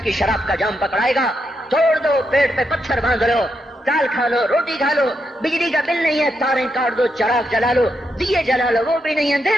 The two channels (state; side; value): normal; both; correlation 0.82